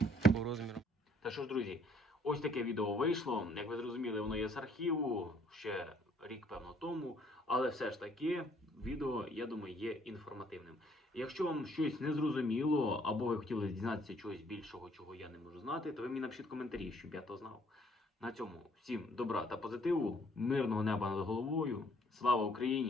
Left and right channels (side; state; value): both; normal; correlation 0.63